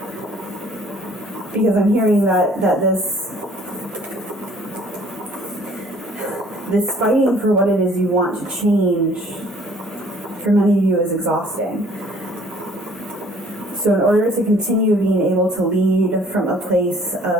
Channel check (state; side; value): normal; both; correlation 0.56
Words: Because I'm hearing that this fighting for what it is you want to change, for many of you, is exhausting. So in order to continue being able to lead from a place